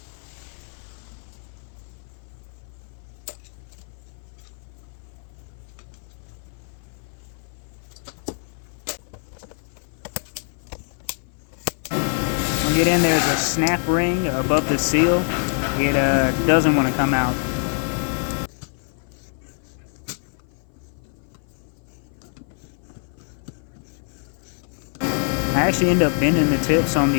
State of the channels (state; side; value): silent; right; 56 dB below the other